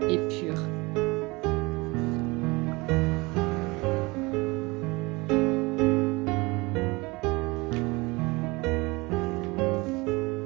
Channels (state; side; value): quieter; left; 24.6 dB